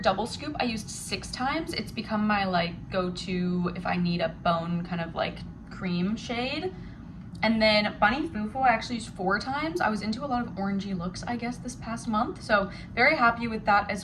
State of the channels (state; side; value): identical; both; correlation 1.00